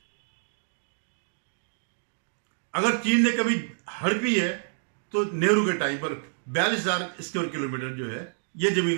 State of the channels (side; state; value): left; silent; digital silence